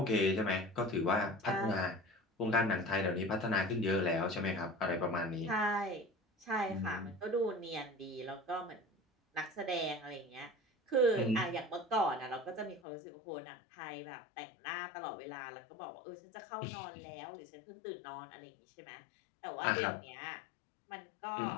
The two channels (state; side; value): drops out; right; at 12.8 s